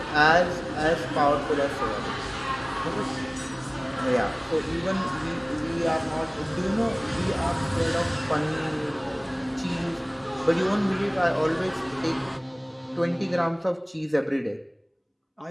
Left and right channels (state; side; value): identical; both; correlation 1.00